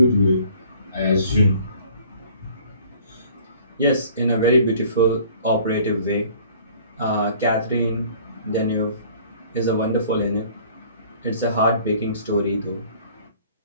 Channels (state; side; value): inverted; both; correlation -0.53